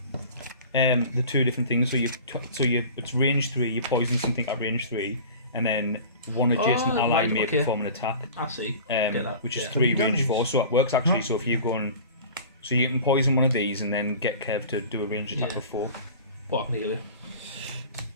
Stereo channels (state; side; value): inverted; both; correlation -0.40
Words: The two different things. So it's range 3. You poison something at range 3, and then one adjacent ally right, may okay. perform an attack. I see. Get that. Which is Yeah. 3 Have you done range these? 4. So it works actually. So if you're going, so you can poison one of these and then get Kev to do a range attack Yeah. with 4. What happened here?